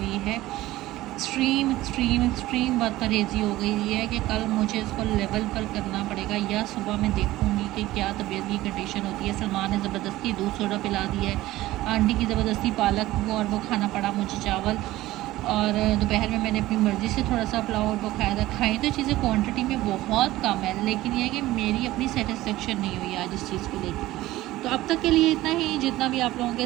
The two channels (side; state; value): left; quieter; 16.7 dB